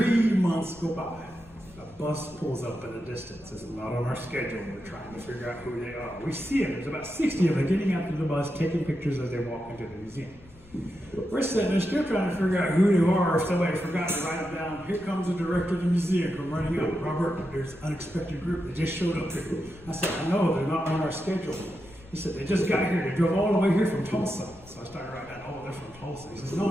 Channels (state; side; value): noise; left; rumble, 23 dB below the sound